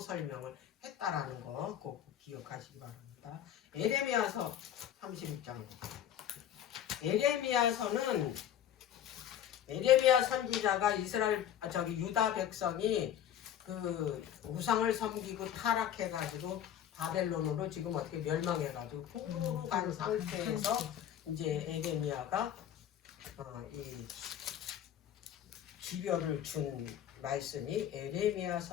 했다라는 거 꼭 기억하시기 바랍니다. 에레미야서 31장. 에레미야 선지자가 유다 백성이 그 우상을 섬기고 타락해가지고 바벨론으로 지금 어떻게 멸망해가지고 풍부로 간 상태에서 이제 에레미야가 이 기별을 준 말씀이 에레미야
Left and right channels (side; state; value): right; quieter; 10.2 dB